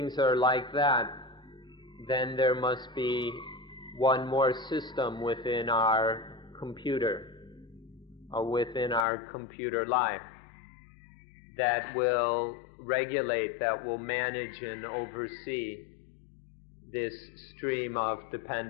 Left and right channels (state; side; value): drops out; right; at 9.1 s